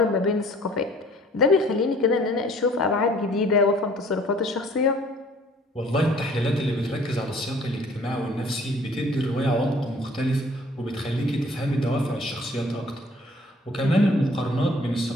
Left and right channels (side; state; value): both; normal; correlation 0.55